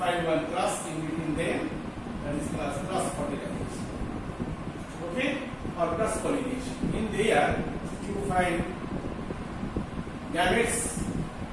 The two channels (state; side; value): identical; both; correlation 1.00